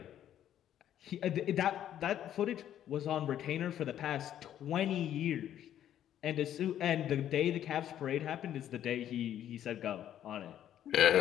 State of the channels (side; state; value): right; quieter; 11.0 dB